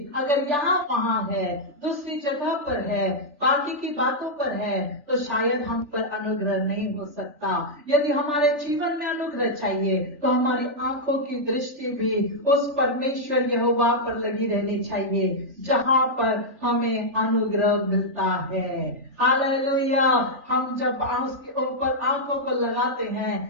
अगर यहाँ वहाँ है, दूसरी जगह पर है, बाकी की बातों पर है, तो शायद हम पर अनुग्रह नहीं हो सकता। यदि हमारे जीवन में अनुग्रह चाहिए तो हमारी आंखों की दृष्टि भी उस परमेश्वर यहोवा पर लगी रहनी चाहिए जहाँ पर हमें अनुग्रह मिलता है। हालेलुया। हम जब उसके ऊपर आंखों को लगाते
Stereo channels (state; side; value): late; left; 3.4 ms